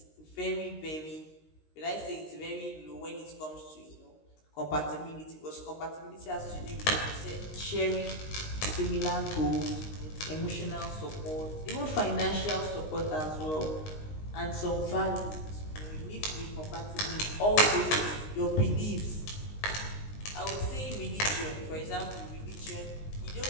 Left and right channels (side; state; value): right; late; 19 ms